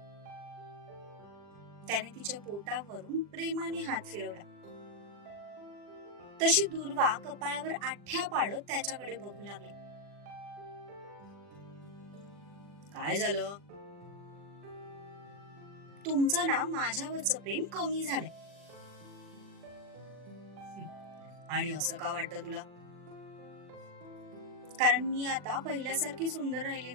त्याने तिच्या पोटावरून प्रेमाने हात फिरवला. तशी दुर्वा कपाळावर आठ्या पाडत त्याच्याकडे बघू लागली. काय झालं? तुमचं ना माझ्यावरचं प्रेम कमी झालंय. आणि असं का वाटतं तुला? कारण मी आता पहिल्यासारखी सुंदर राहिले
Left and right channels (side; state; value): left; late; 40 ms